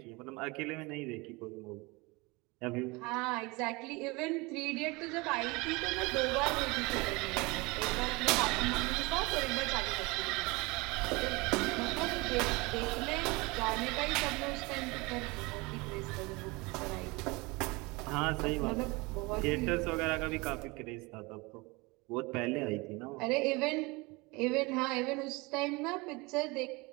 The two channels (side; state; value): left; quieter; 25.1 dB